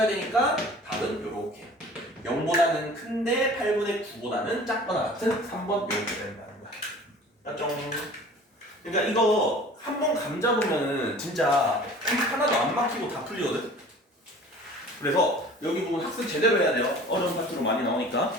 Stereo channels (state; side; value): normal; both; correlation 0.45